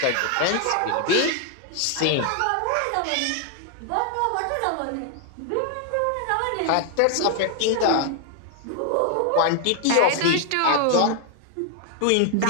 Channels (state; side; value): different; both; correlation 0.00